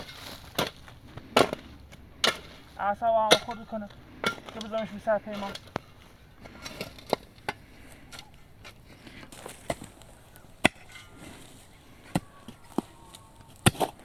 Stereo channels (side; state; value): both; identical; correlation 1.00